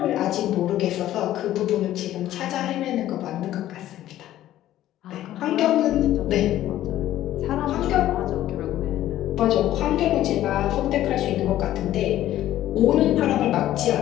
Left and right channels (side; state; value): right; quieter; 13.3 dB